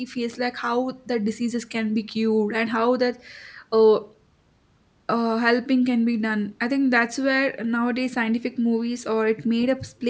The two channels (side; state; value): both; identical; correlation 1.00